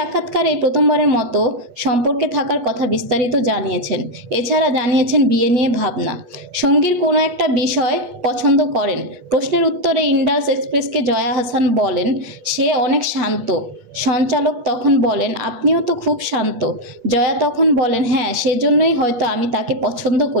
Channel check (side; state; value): left; late; 8.2 ms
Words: প্রথমবারের মতো সম্পর্কে থাকার কথা বিস্তারিত জানিয়েছেন। এছাড়া জানিয়েছেন বিয়ে নিয়ে ভাবনা, সঙ্গীর কোনো একটা বিষয় পছন্দ করেন। প্রশ্নের উত্তরে ইন্ডাস এক্সপ্রেসকে জয়া আহসান বলেন, সে অনেক শান্ত। সঞ্চালক তখন বলেন, আপনিও তো খুব শান্ত। জয়া তখন বলেন, হ্যাঁ, সেজন্যই হয়তো আমি তাকে পছন্দ